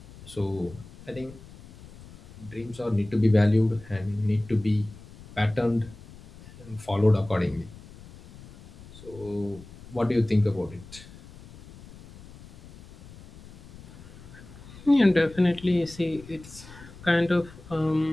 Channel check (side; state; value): left; noise; rumble, 19 dB below the sound